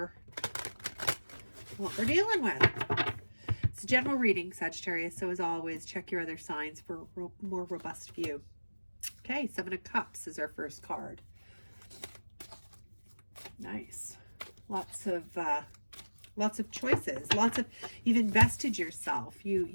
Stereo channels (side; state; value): both; inverted; correlation -1.00